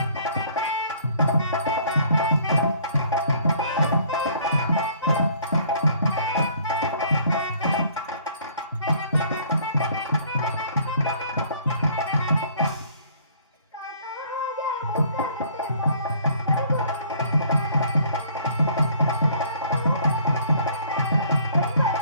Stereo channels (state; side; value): inverted; both; correlation -0.57